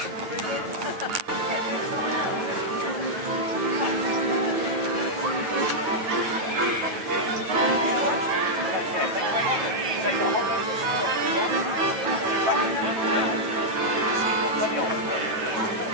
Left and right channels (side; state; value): left; late; 9.3 ms